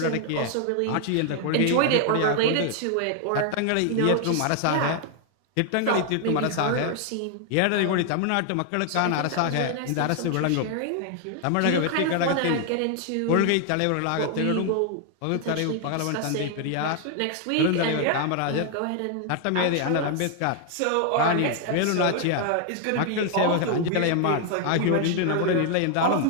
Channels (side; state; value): both; different; correlation 0.00